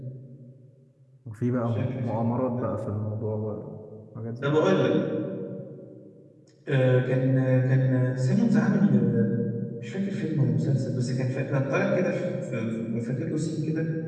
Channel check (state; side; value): identical; both; correlation 1.00